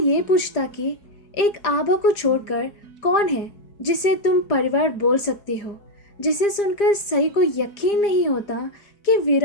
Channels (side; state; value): right; late; 4.9 ms